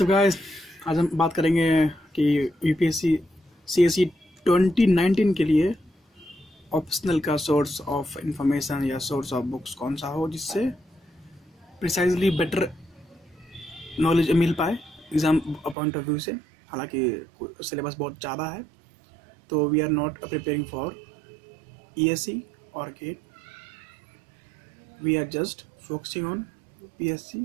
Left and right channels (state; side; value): drops out; left; at 15.8 s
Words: guys, आज हम बात करेंगे कि यूपीएससी सीएसई 2019 के लिए ऑप्शनल का सोर्स ऑफ इंफॉर्मेशन या सोर्स ऑफ बुक्स कौन सा हो जिससे प्रिसाइजली बेटर नॉलेज मिल पाए एग्ज़ाम पॉइंट ऑफ व्यू से। हालांकि सिलेबस बहुत ज़्यादा है, तो we are not preparing for ESC और GATE, we are just focusing on